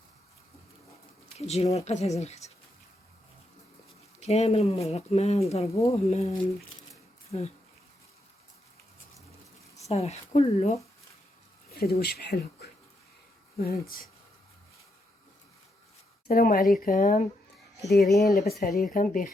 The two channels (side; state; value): both; normal; correlation 0.80